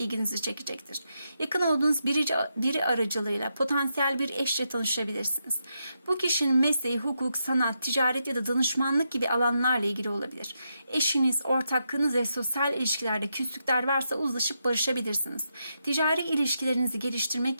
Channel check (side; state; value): both; inverted; correlation -0.83